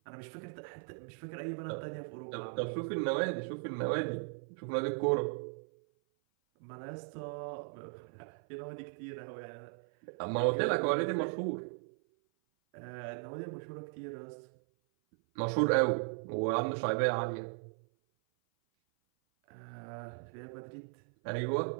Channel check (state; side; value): silent; left; 53 dB below the other